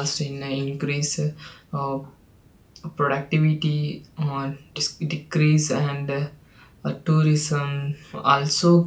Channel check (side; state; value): both; identical; correlation 1.00